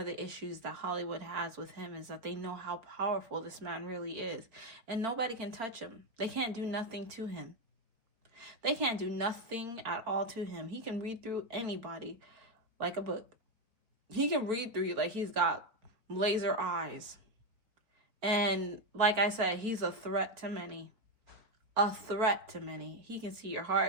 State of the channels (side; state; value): left; late; 4.0 ms